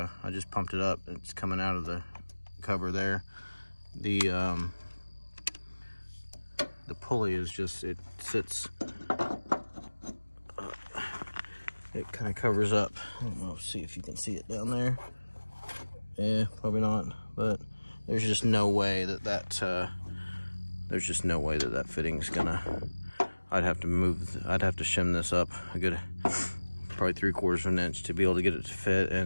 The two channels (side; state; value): both; inverted; correlation -1.00